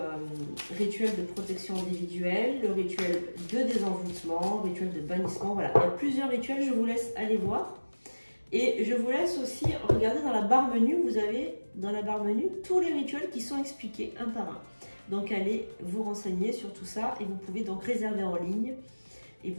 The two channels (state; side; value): inverted; both; correlation -1.00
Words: rituel de protection individuelle, le rituel de désenvoûtement, le rituel de bannissement, voilà. Il y a plusieurs rituels, je vous laisse aller voir. Et je vous laisse aussi regarder dans la barre menu, vous avez dans la barre menu tous les rituels qui sont expliqués un par un. Donc allez vous renseigner sur tout ça et vous pouvez donc réserver en ligne. Et